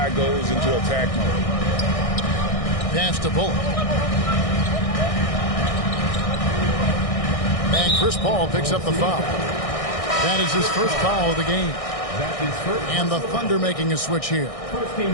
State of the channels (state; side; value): late; right; 1.6 ms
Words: goes into attack mode. Pass to Bullock. And Chris Paul picks up the foul. That is his first foul of the game. And the Thunder making a switch here. First